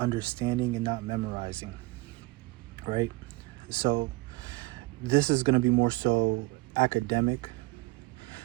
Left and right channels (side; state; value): left; quieter; 21.9 dB